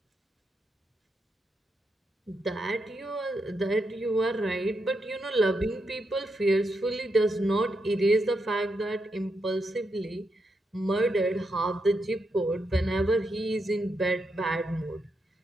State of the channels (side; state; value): both; normal; correlation 0.83